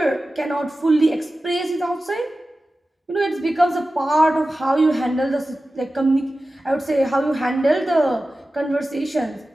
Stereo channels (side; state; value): both; normal; correlation 0.95